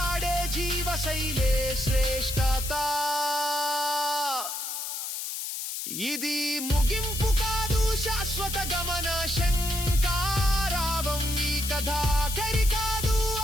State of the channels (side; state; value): left; noise; hiss, 5 dB below the sound